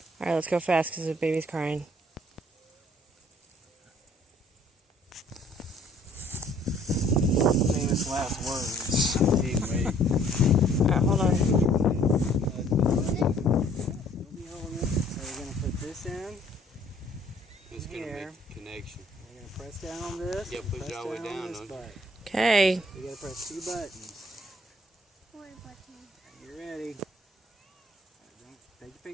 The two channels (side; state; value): both; normal; correlation 0.59